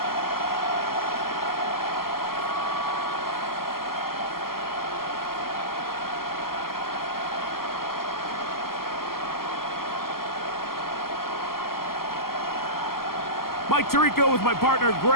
Mike Tirico with my partner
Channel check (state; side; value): late; right; 0.92 ms